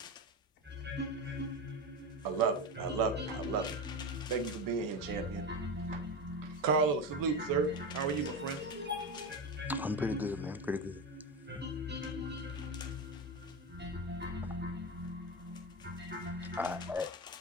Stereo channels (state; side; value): normal; both; correlation 0.19